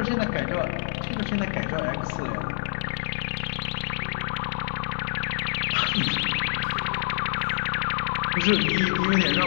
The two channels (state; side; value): silent; right; 60 dB below the other